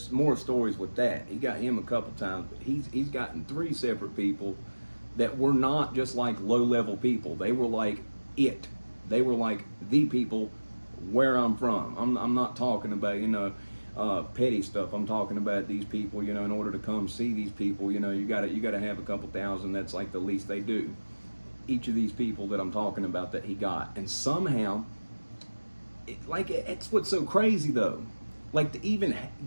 more stories with that. He got him a couple times, but he's gotten 3 separate people that were not just like low-level people. They were like it. They were like the people where I'm from. I'm not talking about, you know, petty stuff. I'm talking about these people, you know, in order to come see these people, you know, you gotta have a couple thousand. That's like the least they do. Each of these people that I'm talking about that he got. And somehow, it's what's so crazy though. Like, to even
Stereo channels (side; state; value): both; inverted; correlation -1.00